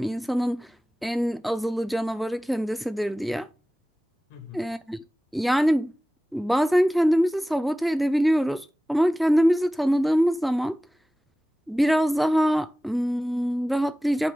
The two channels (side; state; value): both; normal; correlation 0.98